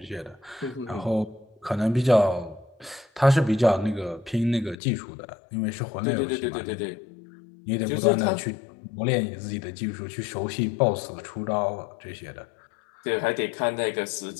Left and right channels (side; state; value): right; drops out; at 4.8 s